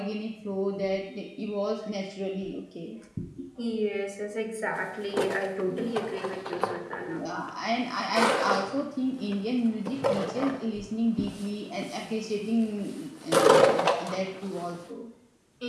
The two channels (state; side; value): identical; both; correlation 1.00